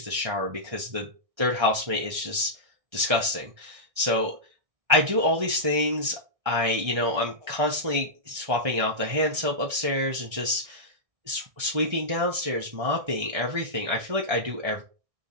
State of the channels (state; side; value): late; left; 1.6 ms